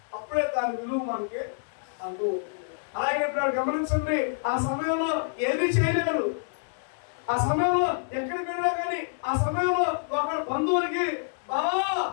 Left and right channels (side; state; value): right; silent; 60 dB below the other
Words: అప్పుడే దాని విలువ మనకి అర్థం అవుతుంది. అలాగే ఇప్పుడు గమనించండి, ఆ సమయంలో ఏమీ చేయలేరు. ఆ సమయంలో ఎక్కడికి వెళ్ళినా కానీ ఆ సమయంలో ఒక బంధువులకి బావా